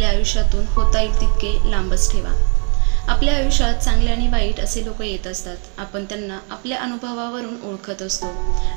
आयुष्यातून होता येईल तितके लांबच ठेवा. आपल्या आयुष्यात चांगले आणि वाईट असे लोक येत असतात. आपण त्यांना आपल्या अनुभवावरून ओळखत असतो.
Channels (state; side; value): quieter; left; 38.1 dB